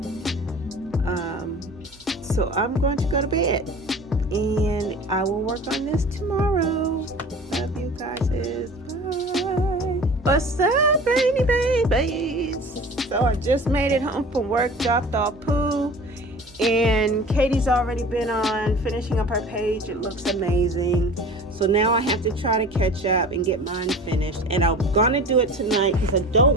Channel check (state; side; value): normal; both; correlation 0.40